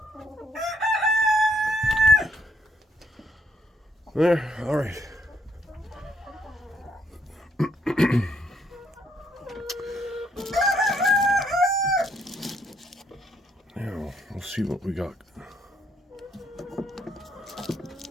There, all right. Now, we'll see what we got.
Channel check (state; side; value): normal; both; correlation 0.71